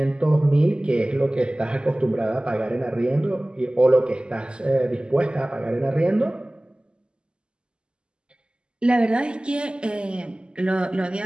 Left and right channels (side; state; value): left; late; 0.049 ms